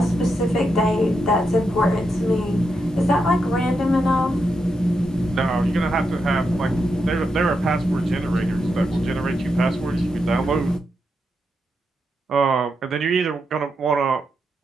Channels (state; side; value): normal; both; correlation 0.84